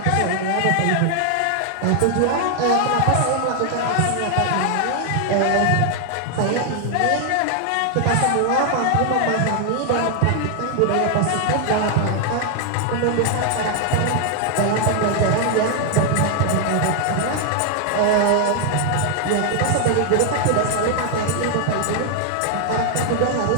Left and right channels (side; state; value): both; different; correlation 0.00